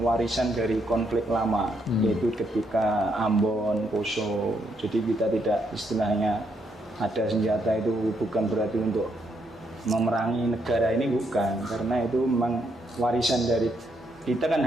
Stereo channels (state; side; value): normal; both; correlation 0.76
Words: warisan dari konflik lama, yaitu ketika Ambon, Poso. Jadi kita tidak istilahnya ada senjata itu bukan berarti untuk memerangi negara ini, bukan, karena itu memang warisan dari kita kan